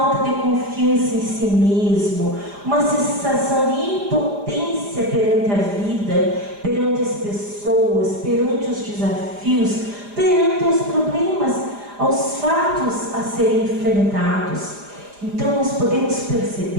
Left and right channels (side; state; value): left; late; 4.9 ms